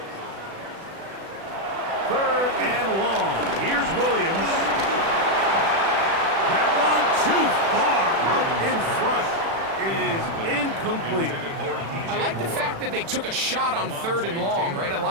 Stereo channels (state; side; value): late; left; 36 ms